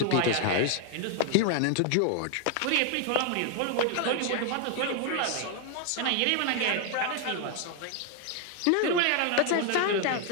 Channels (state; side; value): different; both; correlation 0.00